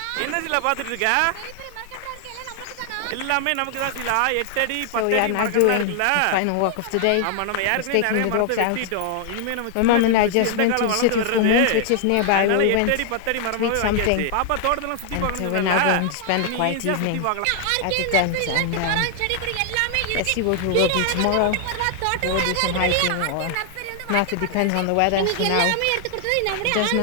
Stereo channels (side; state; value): both; different; correlation 0.00